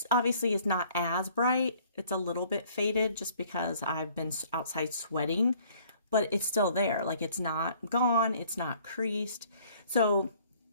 obviously is not as bright. It's a little bit faded just because I've been outside sweating. But it's still there. Like, it's not gone. It's not creased. So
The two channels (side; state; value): both; inverted; correlation -0.58